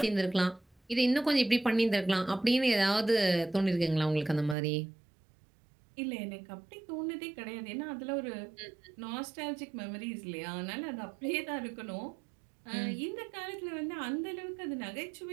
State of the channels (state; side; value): drops out; left; at 4.5 s